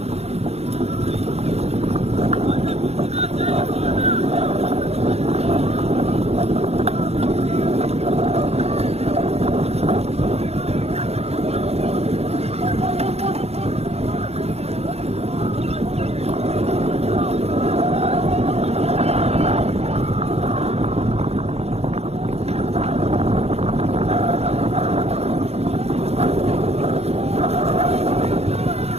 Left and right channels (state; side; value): late; left; 0.30 ms